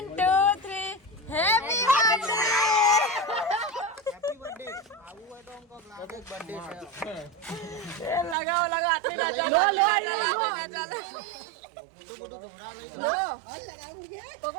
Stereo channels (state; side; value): drops out; left; at 8.3 s